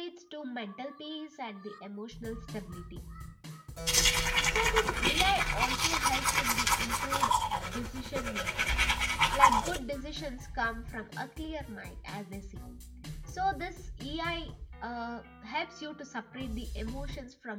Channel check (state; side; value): identical; both; correlation 1.00